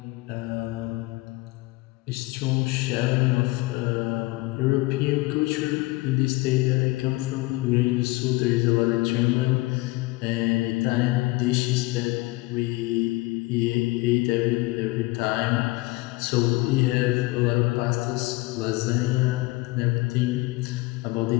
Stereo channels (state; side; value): quieter; right; 21.7 dB